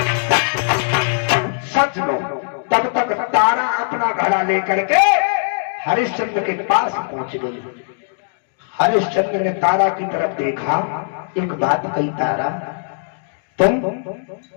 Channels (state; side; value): silent; right; digital silence